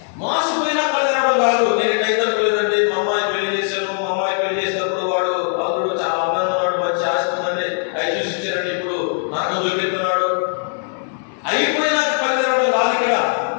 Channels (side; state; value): right; silent; 66 dB below the other